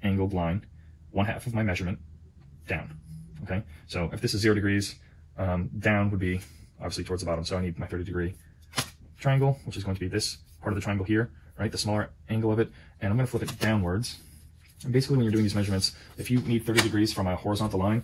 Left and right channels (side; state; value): both; identical; correlation 1.00